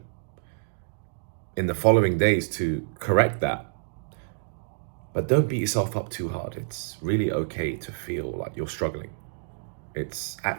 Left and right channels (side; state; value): left; silent; digital silence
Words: in the following days to correct that. But don't beat yourself up too hard. It's really okay to feel like you're struggling. It's